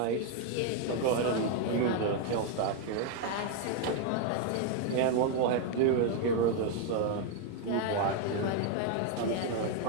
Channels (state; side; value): different; both; correlation 0.00